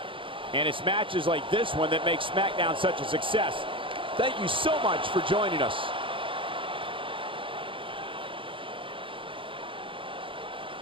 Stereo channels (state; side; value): late; left; 0.25 ms